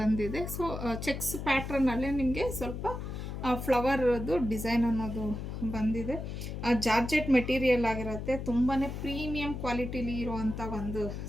ಬಂದಿದೆ. ಸೊ ಚೆಕ್ಸ್ ಪ್ಯಾಟ್ರನ್ನಲ್ಲೇ ನಿಮಗೆ ಸ್ವಲ್ಪ ಫ್ಲವರ್ದು ಡಿಸೈನ್ ಅನ್ನೋದು ಬಂದಿದೆ. ಜಾರ್ಜೆಟ್ ಮೆಟೀರಿಯಲ್ ಆಗಿರುತ್ತೆ. ತುಂಬಾ ಪ್ರೀಮಿಯಂ ಕ್ವಾಲಿಟಿಲಿ ಇರುವಂಥ ಒಂದು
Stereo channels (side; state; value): left; noise; hum, 6 dB below the sound